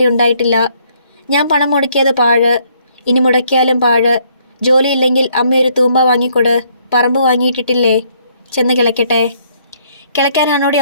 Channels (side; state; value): both; inverted; correlation -0.67